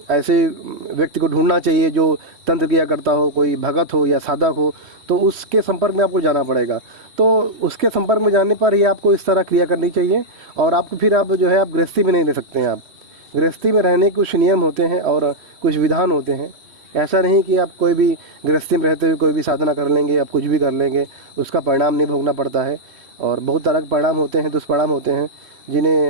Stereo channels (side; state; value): left; late; 3.1 ms